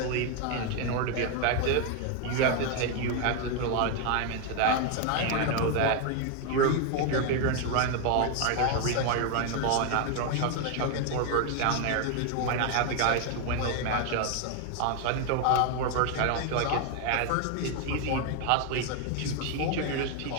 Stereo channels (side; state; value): both; different; correlation 0.01